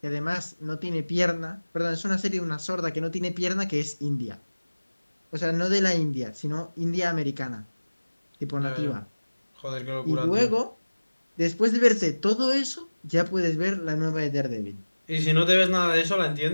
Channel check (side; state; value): both; inverted; correlation -1.00